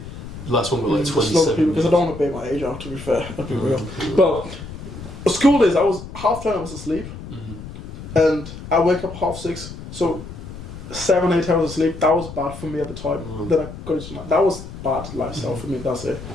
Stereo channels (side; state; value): left; noise; rumble, 12 dB below the sound